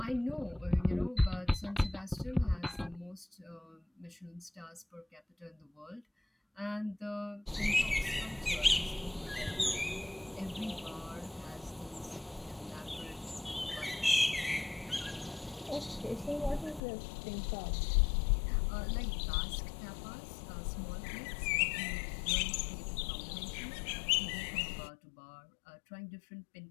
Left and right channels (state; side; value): drops out; right; at 16.8 s